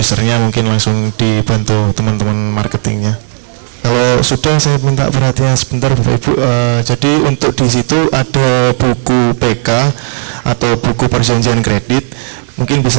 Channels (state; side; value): silent; left; 60 dB below the other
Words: mungkin langsung dibantu teman-teman marketingnya. Kalau sudah, saya minta perhatian sebentar Bapak Ibu. Jadi untuk di situ ada buku PK atau buku perjanjian kredit, mungkin